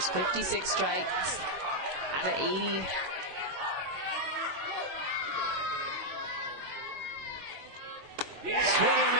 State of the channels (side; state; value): left; late; 21 ms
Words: 56 strikes out of 80. Swing and